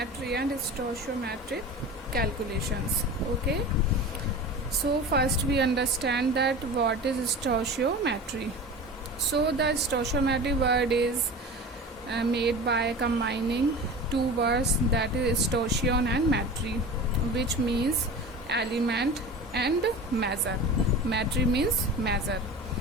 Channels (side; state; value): both; normal; correlation 0.34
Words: and stoichiometric calculations. Okay, so first we understand that what is stoichiometry. So the stoichiometry word is made by combining two words, that is stoichion and metry, which means element and measure. Metry means measure.